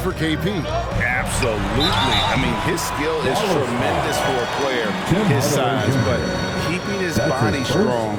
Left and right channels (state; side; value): identical; both; correlation 1.00